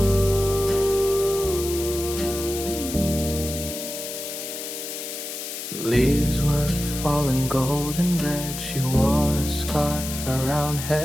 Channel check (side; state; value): left; noise; hiss, 7 dB below the sound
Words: all in gold and red. She wore a scarf around